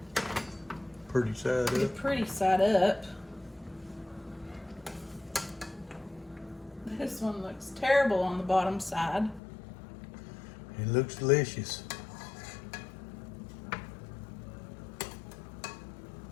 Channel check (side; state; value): right; drops out; at 9.4 s